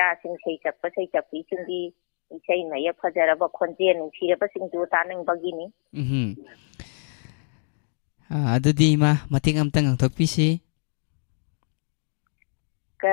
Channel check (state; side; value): silent; right; digital silence